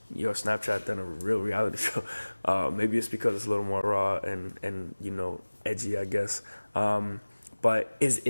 your Snapchat than a real reality show. Maybe it's because it's a little more raw and you know, edgy, I guess. But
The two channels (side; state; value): both; inverted; correlation -1.00